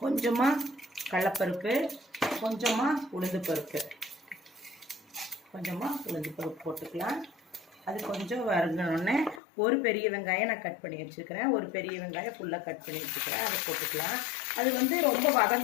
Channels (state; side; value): drops out; right; at 9.4 s